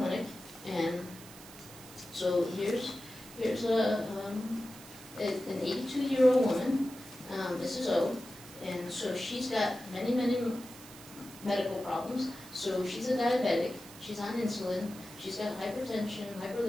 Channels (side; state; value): right; noise; hiss, 18 dB below the sound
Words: And so here's an 82-year-old woman, Mrs. O, and so she's got many medical problems. So she's a diabetic, she's on insulin, she's got hypertension,